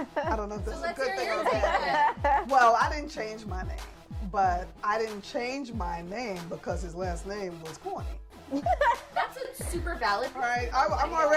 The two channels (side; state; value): both; identical; correlation 1.00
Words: don't know if that's a good thing or a bad thing. Well, I didn't change my name, but I didn't change my name because his last name was corny. That's a super valid point. Right?